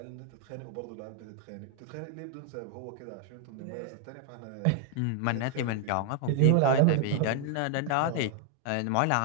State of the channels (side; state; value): both; different; correlation 0.00